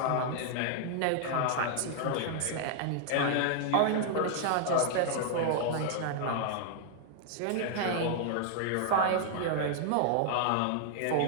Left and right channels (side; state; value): both; different; correlation 0.00